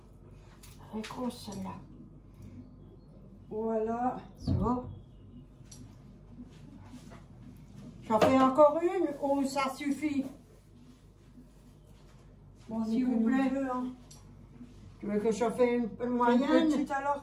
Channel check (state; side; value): identical; both; correlation 1.00